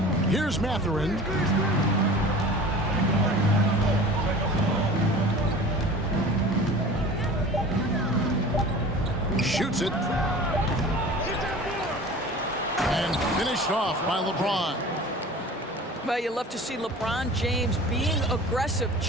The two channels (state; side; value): normal; both; correlation 0.40